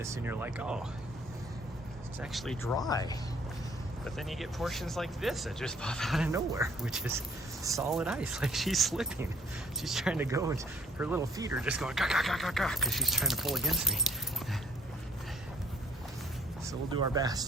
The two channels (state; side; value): normal; both; correlation 0.60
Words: and you're like, oh, it's actually dry. But then you get portions like this that just pop out of nowhere, which is solid ice. Like, she's slipping. She's trying to go, and her little feet are just going because she's trying to pull against me. So we'll do our